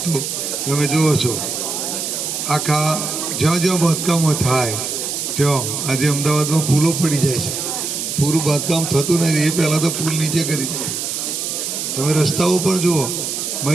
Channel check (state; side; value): noise; right; hiss, 3 dB below the sound